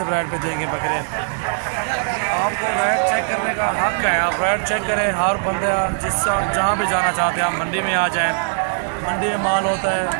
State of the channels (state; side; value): silent; left; 66 dB below the other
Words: रेट पे देंगे बकरे। आपको रेट चेक करने का हक है, आप रेट चेक करें। हर बंदे जहाँ भी जाना चाहते हैं, आप मंडी में आ जाएँ। मंडी में माल होता है,